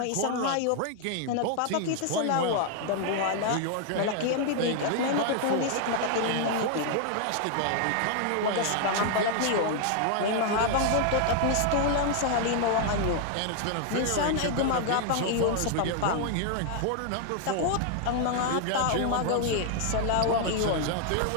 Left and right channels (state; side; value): different; both; correlation 0.00